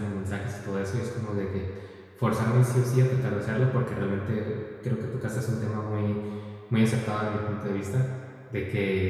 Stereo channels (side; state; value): both; identical; correlation 1.00